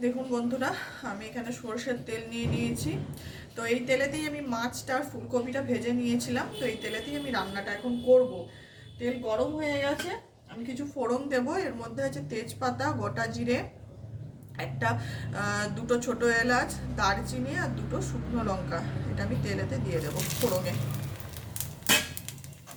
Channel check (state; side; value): identical; both; correlation 1.00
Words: দেখুন বন্ধুরা, আমি এখানে সরষের তেল নিয়ে নিয়েছি। তো এই তেলেতেই আমি মাছটা আর ফুলকপিটা ভেজে নিয়েছিলাম। তো এই তেলেতেই আমি রান্নাটা এখন করব। তেল গরম হয়ে গেছে, আমি কিছু ফোড়ন দেব। এর মধ্যে আছে তেজপাতা, গোটা জিরে, একটা দুটো ছোট এলাচ, দারচিনি আর দুটো শুকনো লঙ্কা। এটা আমি তেলেতে দিয়ে দেবো ফোড়নে।